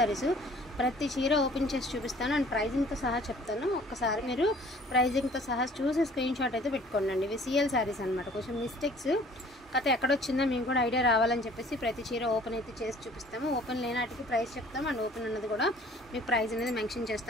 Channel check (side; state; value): both; normal; correlation 0.53